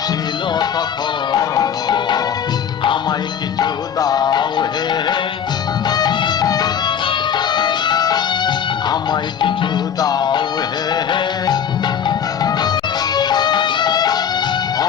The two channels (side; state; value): right; quieter; 8.2 dB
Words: তখন, আমায় কিছু দাও হে, আমায় কিছু দাও হে,